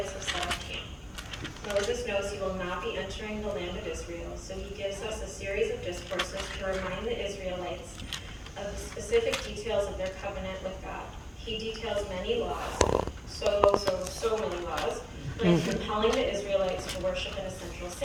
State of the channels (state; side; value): identical; both; correlation 1.00